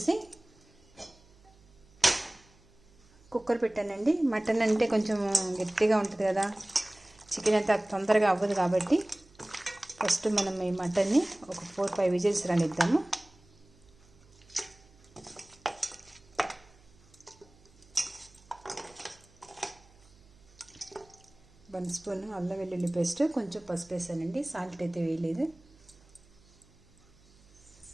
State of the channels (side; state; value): right; noise; hum, 28 dB below the sound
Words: కుక్కర్ పెట్టానండి. మటన్ అంటే కొంచెం గట్టిగా ఉంటుంది కదా, చికెన్ అంతా తొందరగా అవ్వదు కాబట్టి ఫస్ట్ మనం ఈ మటన్ని ఒక 4-5 విజిల్స్ రానిద్దాము. వన్ స్పూన్ అల్లం వెల్లుల్లి పేస్ట్, కొంచెం పసుపు వేసానండి. సాల్ట్ అయితే వేయలేదు.